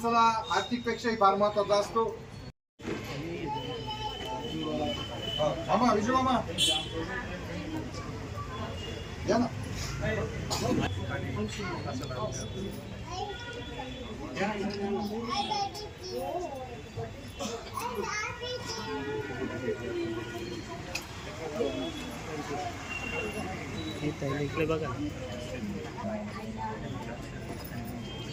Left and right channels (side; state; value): both; identical; correlation 1.00